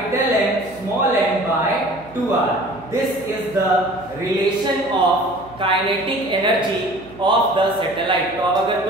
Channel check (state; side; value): noise; right; hum, 23 dB below the sound